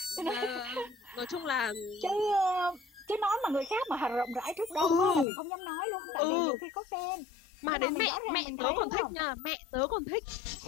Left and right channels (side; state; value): right; drops out; at 5.2 s